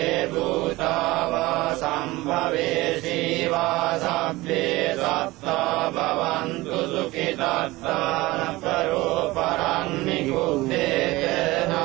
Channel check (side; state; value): left; quieter; 20.0 dB